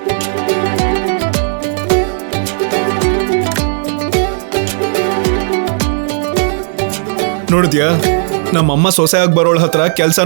ನೋಡಿದ್ಯಾ, ನಮ್ಮಮ್ಮ ಸೊಸೆಯಾಗಿ ಬರೋಳ ಹತ್ರ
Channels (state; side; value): silent; left; 64 dB below the other